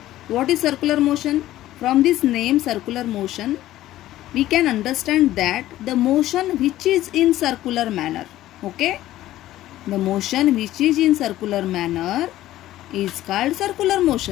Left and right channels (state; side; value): quieter; right; 14.5 dB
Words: What is circular motion? From this name circular motion, we can understand that the motion which is in circular manner. Okay, the motion which is in circular manner is called circular